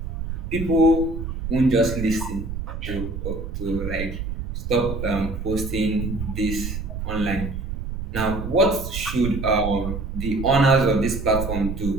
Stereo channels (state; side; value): noise; right; rumble, 5 dB below the sound